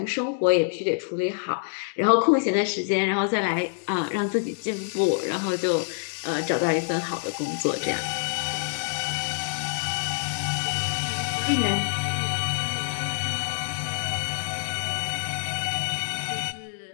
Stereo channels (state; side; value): silent; right; digital silence